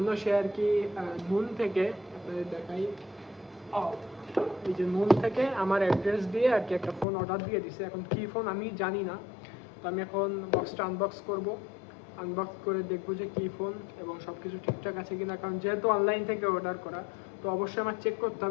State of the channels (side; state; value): right; drops out; at 7.1 s